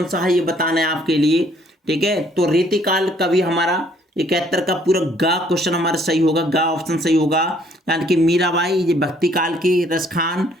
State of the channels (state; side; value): normal; both; correlation 0.63